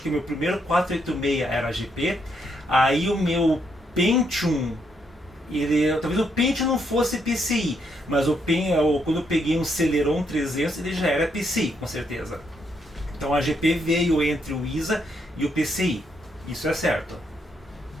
que o meu primeiro 486 era AGP. Aí o meu Pentium, talvez o Pentium não fosse PCI, mas quando eu peguei um Celeron 300, ele já era PCI, com certeza. Então a AGP veio entre o ISA e o PCI. Isso é certo.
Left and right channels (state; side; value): normal; both; correlation 0.76